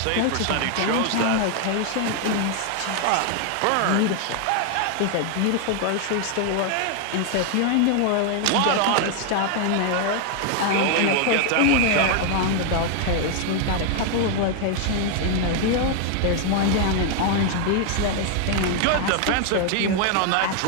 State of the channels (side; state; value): both; different; correlation 0.00